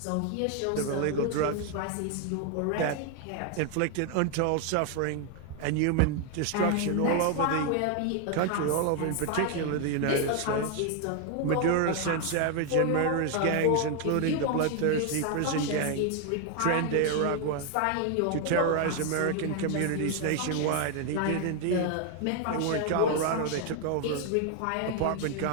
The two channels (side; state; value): both; different; correlation 0.01